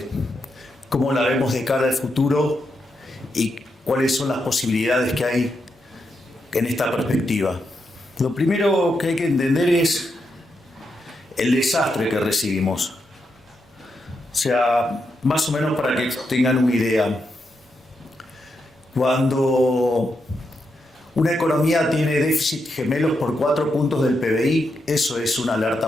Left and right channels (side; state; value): both; normal; correlation 0.83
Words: cómo la vemos de cara al futuro y cuáles son las posibilidades que hay en esta perspectiva. Lo primero que hay que entender es el desastre que recibimos. O sea, más o menos para que tengan una idea. Cuando una economía tiene déficit gemelos por 4 puntos del PBI, eso es una alerta